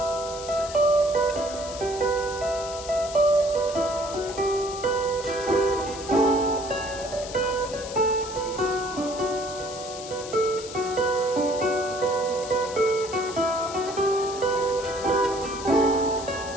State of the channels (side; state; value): left; noise; hiss, 12 dB below the sound